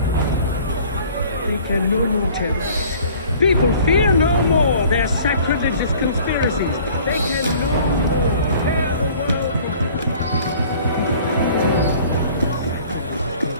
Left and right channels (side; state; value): both; inverted; correlation -0.50